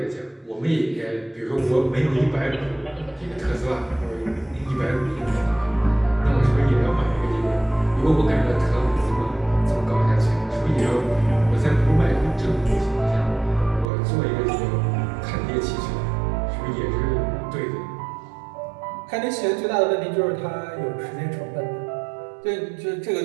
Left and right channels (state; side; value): drops out; left; at 13.9 s